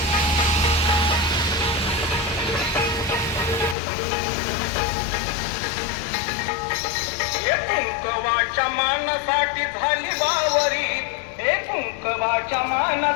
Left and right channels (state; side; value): drops out; right; at 3.8 s